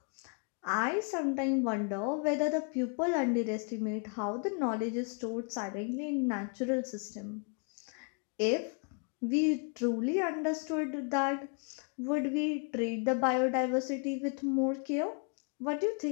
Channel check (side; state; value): right; quieter; 40.0 dB